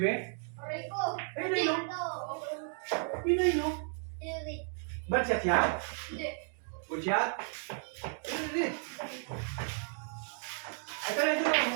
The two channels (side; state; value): left; silent; 55 dB below the other